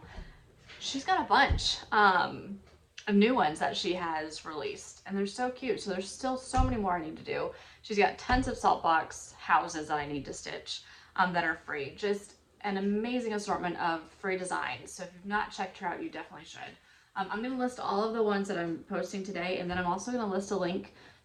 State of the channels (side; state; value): both; identical; correlation 1.00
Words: She's got a bunch of new ones that she has released, and they're so cute. So there's still so many more I need to do. She's got tons of salt box houses that I need to stitch that are free. Just an amazing assortment of free designs. So if you've not checked her out, you definitely should. I'm going to list all of the ones that I'm posting today, and then I'm also going to list a link